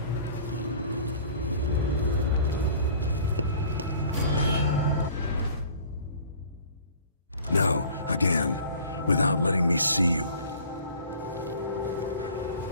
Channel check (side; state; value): both; inverted; correlation -0.48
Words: No, again, without letting me see you.